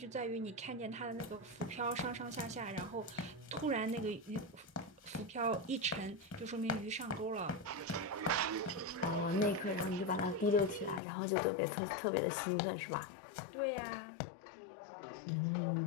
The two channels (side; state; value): right; drops out; at 11.0 s